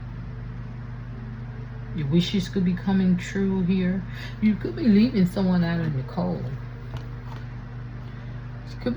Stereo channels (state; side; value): identical; both; correlation 1.00